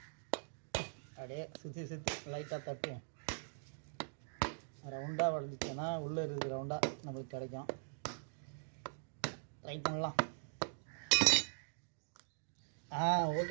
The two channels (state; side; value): silent; left; digital silence